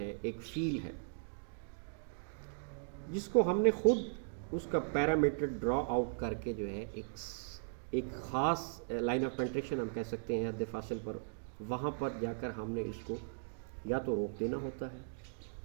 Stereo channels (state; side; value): silent; left; digital silence